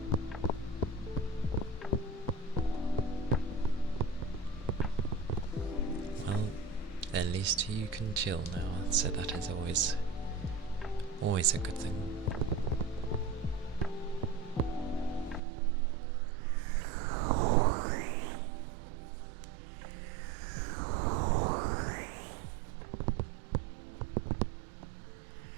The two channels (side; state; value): left; drops out; at 15.4 s